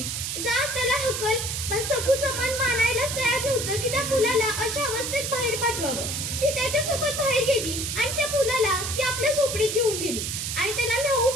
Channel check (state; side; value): noise; right; hiss, 3 dB below the sound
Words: जा त्याला हकल. पण सखूचं मन मानायलाच तयार नव्हतं की त्या मुलाला अशा अवस्थेत बाहेर पाठवावं. ती त्याच्यासोबत बाहेर गेली आणि त्या मुलाला ती आपल्या झोपडीत घेऊन गेली आणि त्याला न्हाऊ